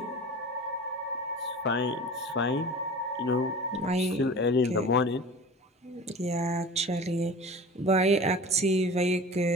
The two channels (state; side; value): normal; both; correlation 0.37